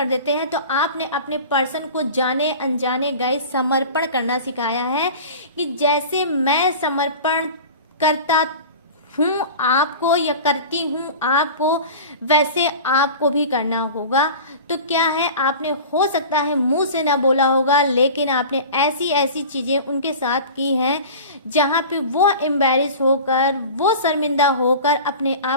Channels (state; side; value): inverted; both; correlation -0.36